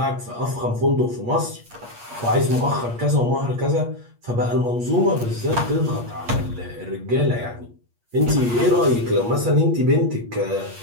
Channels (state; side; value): late; left; 8.4 ms